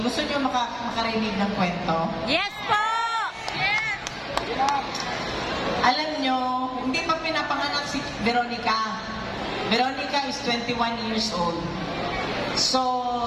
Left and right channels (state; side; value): identical; both; correlation 1.00